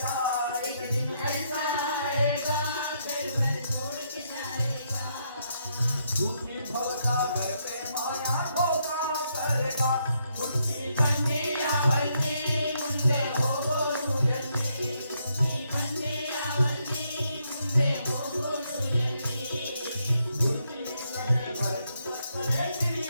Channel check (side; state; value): both; inverted; correlation -0.76